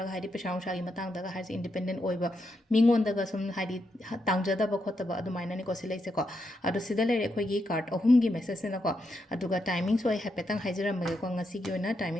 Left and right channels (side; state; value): both; normal; correlation 0.82